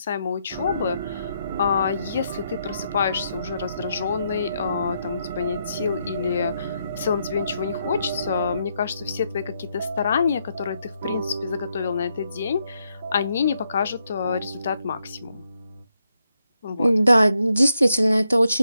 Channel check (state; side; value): inverted; both; correlation -0.80